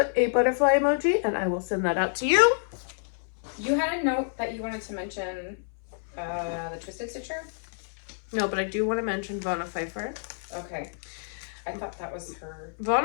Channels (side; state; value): right; silent; 59 dB below the other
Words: a butterfly emoji and I will send that out to you. You had a note that you wanted to mention the Twisted Stitcher? No, but I do want to mention Vonna Pfeiffer. Okay. I thought that was her.